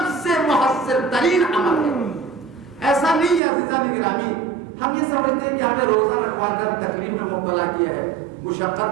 سے مؤثر ترین عمل ہے۔ ایسا نہیں ہے عزیزان گرامی ہم یہ سمجھتے ہیں کہ ہمیں روزہ رکھوا کر تکلیف میں مبتلا کیا ہے، مشقت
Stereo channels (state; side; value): drops out; left; at 3.4 s